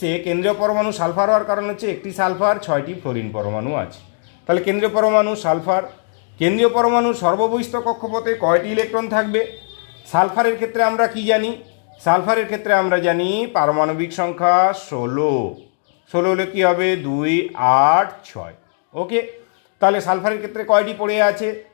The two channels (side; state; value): right; silent; 67 dB below the other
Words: এ কেন্দ্রীয় পরমাণু সালফার হওয়ার কারণ হচ্ছে একটি সালফার, 6টি ফ্লোরিন পরমাণু আছে। তাহলে কেন্দ্রীয় পরমাণু সালফার। কেন্দ্রীয় পরমাণু সর্ববহিস্থ কক্ষপথে কয়টি ইলেকট্রন থাকবে? সালফারের ক্ষেত্রে আমরা কি জানি? সালফারের ক্ষেত্রে আমরা জানি পারমাণবিক সংখ্যা 16। 16 হলে কী হবে? 2, 8, 6। ওকে, তাহলে সালফারের ক্ষেত্রে কয়টি পড়ে আছে?